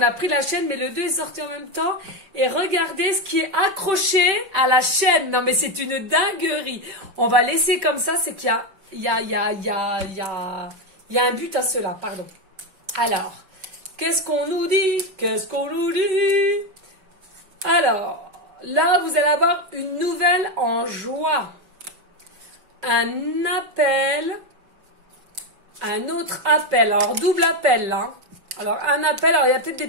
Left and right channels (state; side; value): late; left; 5.2 ms